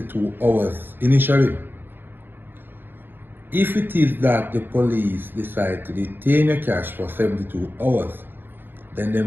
hours initially. If it is that the police decide to detain your cash for 72 hours, then they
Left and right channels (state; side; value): late; left; 0.097 ms